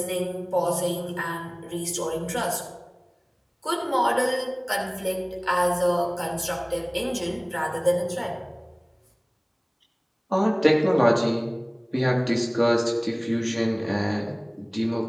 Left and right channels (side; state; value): both; identical; correlation 1.00